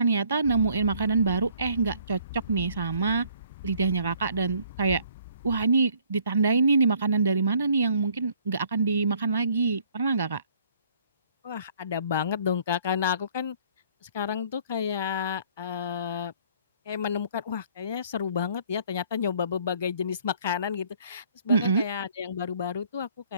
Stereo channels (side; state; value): both; inverted; correlation -0.61